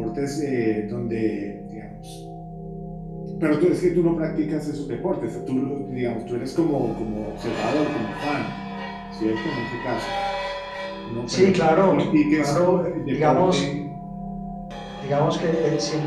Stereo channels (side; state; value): both; identical; correlation 1.00